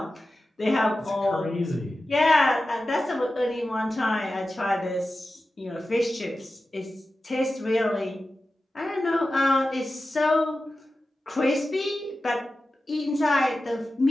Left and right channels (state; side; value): normal; both; correlation 0.94